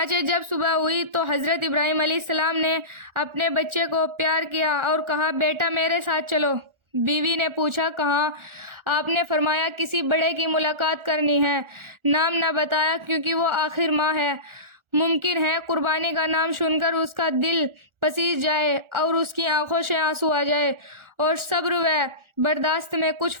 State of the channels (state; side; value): late; left; 1.4 ms